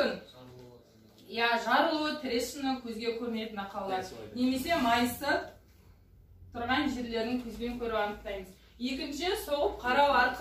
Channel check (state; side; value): identical; both; correlation 1.00